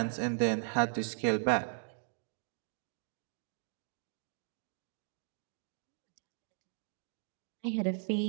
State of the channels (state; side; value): silent; left; digital silence